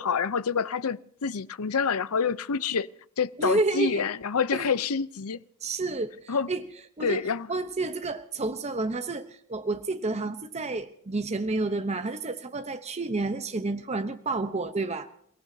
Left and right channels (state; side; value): normal; both; correlation 0.10